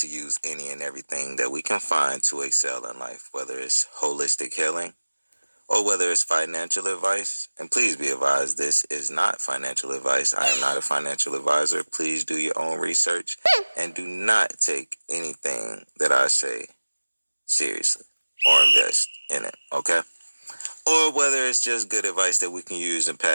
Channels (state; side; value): inverted; both; correlation -1.00